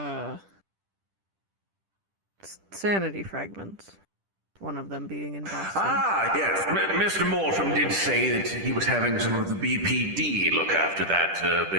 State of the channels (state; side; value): late; left; 10 ms